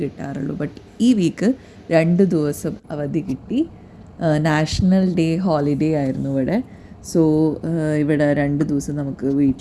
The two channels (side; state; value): both; identical; correlation 1.00